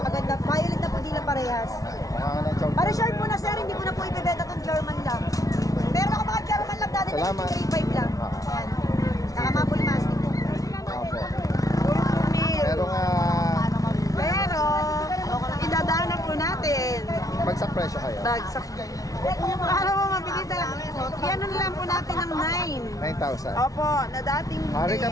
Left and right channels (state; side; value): late; right; 0.17 ms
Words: Violet na po dila parehas. Mukha ka ng chow. Para short po na sir, hindi ko na po ibebenta tong German lang. Meron ako mga German lang Daddy Des, Salamat. 3-5 lang. Yan. Nakamapul mastic po. Opo. Meron. Merong Pero, idadaan na po natin. bagsak presyo kayo. Bagsak. Para mo mabilis na lang. Yan na lang po natin ng 9. 9,000. Opo, na dating